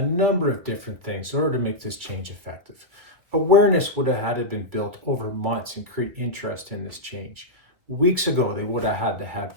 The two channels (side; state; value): left; late; 2.0 ms